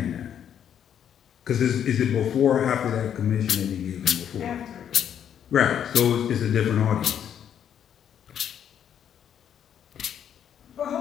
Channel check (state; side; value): quieter; right; 9.2 dB